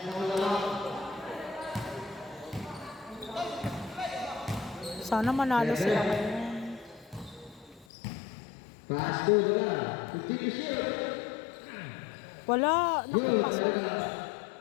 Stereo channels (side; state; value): right; drops out; at 7.9 s